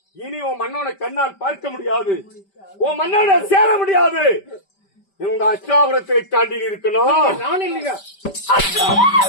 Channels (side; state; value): right; late; 5.1 ms